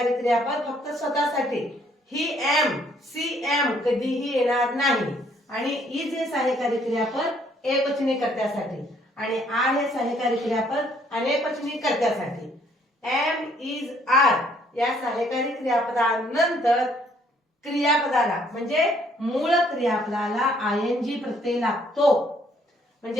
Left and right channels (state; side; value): normal; both; correlation 0.65